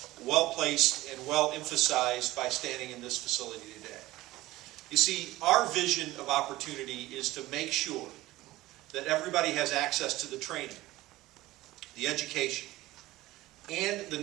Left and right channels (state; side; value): quieter; left; 17.5 dB